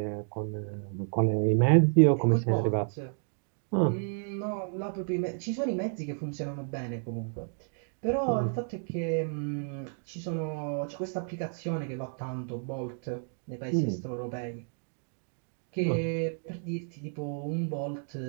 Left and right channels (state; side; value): silent; left; 57 dB below the other